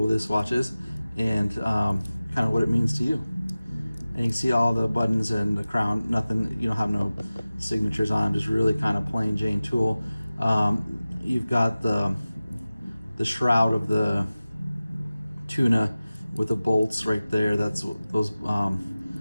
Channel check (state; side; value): inverted; both; correlation -0.97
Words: this watch is and kind of what it means to you. And you can see all the buttons and the crown, nothing, you don't have no signatures on them, just really kind of plain Jane tool. You've got the shroud of the tuna with the bolts right there. That's what those